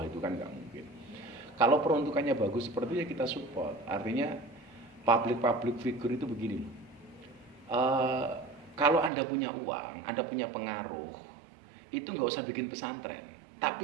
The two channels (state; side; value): drops out; left; at 9.1 s